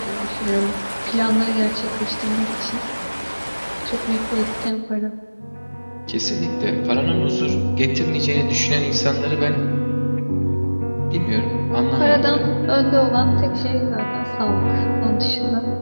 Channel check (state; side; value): inverted; both; correlation -1.00